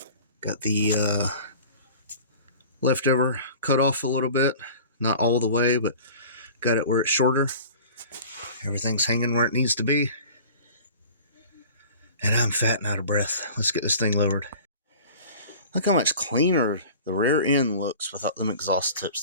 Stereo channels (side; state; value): both; inverted; correlation -0.42